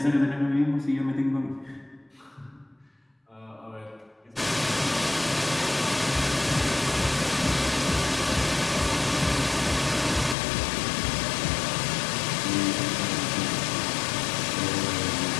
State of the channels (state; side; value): drops out; right; at 10.4 s